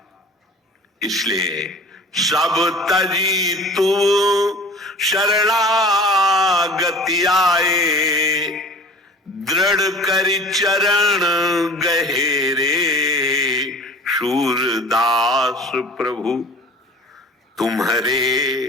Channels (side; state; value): both; normal; correlation 0.43